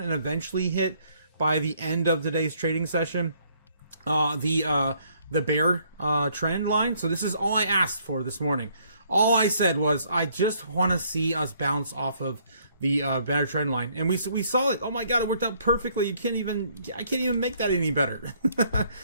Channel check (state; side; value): inverted; both; correlation -0.66